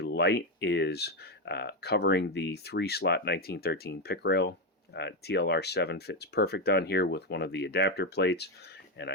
light is covering the 3-slot 1913 pick rail. TLR7 fits perfect on here with one of the adapter plates, and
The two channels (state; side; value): normal; both; correlation 0.09